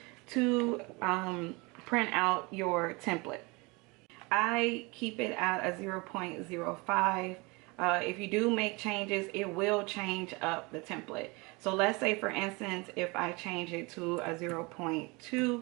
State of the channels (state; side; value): quieter; left; 26.4 dB